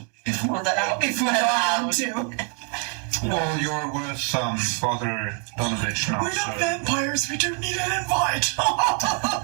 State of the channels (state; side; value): quieter; left; 39.8 dB